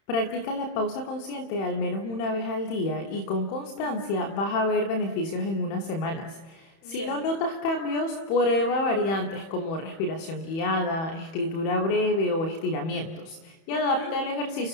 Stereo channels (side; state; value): right; late; 31 ms